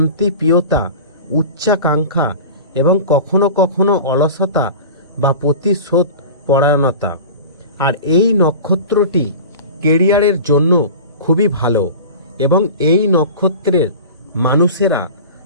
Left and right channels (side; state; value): both; inverted; correlation -0.34